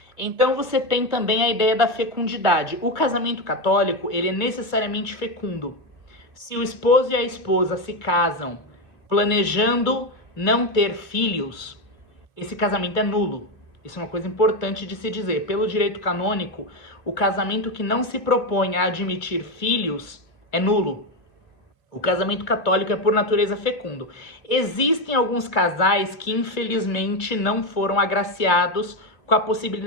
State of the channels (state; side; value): late; right; 2.3 ms